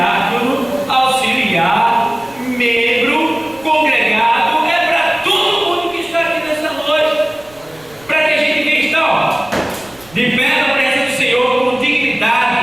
auxiliar, membro, congregado. É para todo mundo que está aqui nessa noite, para que a gente venha estar de pé na presença do Senhor com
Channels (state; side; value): noise; right; rumble, 26 dB below the sound